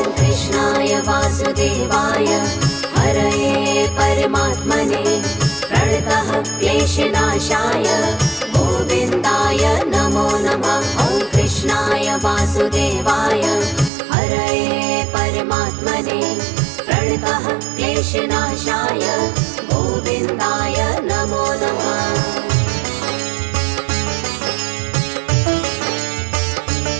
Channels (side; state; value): left; drops out; at 13.9 s